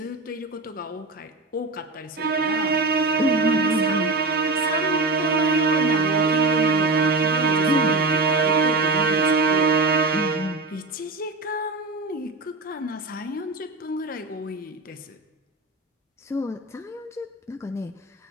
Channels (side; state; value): left; quieter; 3.3 dB